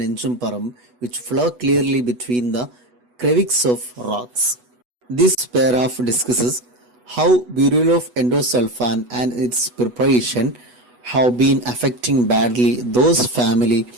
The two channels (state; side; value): late; left; 8.2 ms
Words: which flow clearly between the crevices of rocks. This paragraph discusses how burial of endosulfan and its preparation have been affecting badly those family